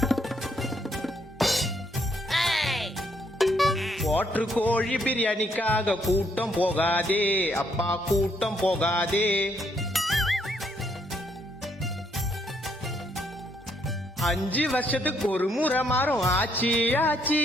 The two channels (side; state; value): both; normal; correlation 0.72